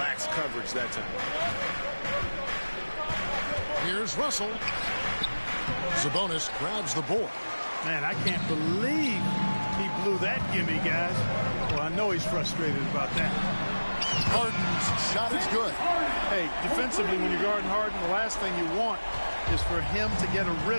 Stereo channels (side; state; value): both; inverted; correlation -1.00